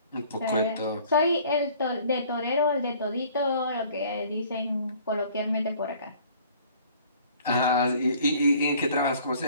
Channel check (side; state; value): both; inverted; correlation -0.54